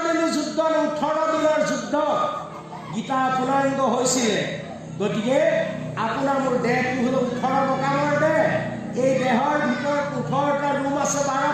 দিনীয়া যুদ্ধ 18 দিনৰ যুদ্ধ গীতা পূৰ্ণাংগ হৈছিলে গতিকে আপোনাৰ মোৰ দেহটো হ'ল 18 মকামৰ দেহ এই দেহৰ ভিতৰত 18টা ৰুম আছে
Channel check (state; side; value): identical; both; correlation 1.00